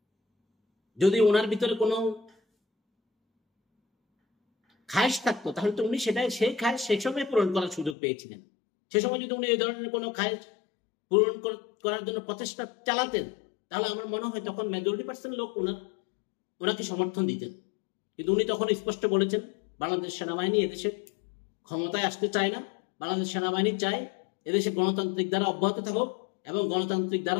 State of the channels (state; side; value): drops out; right; at 8.0 s